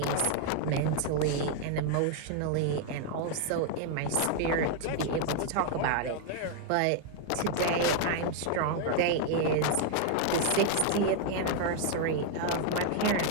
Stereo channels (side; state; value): both; different; correlation 0.00